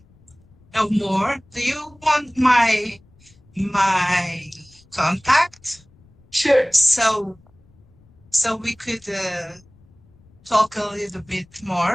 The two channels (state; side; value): noise; left; rumble, 29 dB below the sound